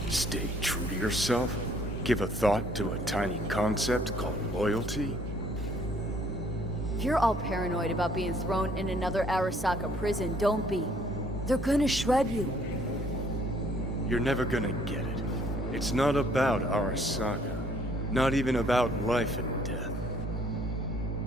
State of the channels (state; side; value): normal; both; correlation 0.62